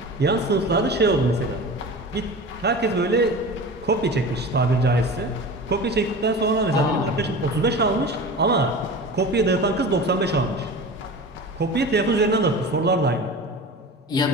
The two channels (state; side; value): normal; both; correlation 0.33